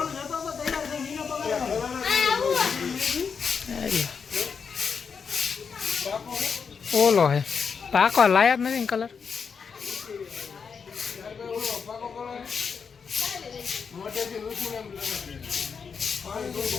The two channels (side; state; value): right; quieter; 6.0 dB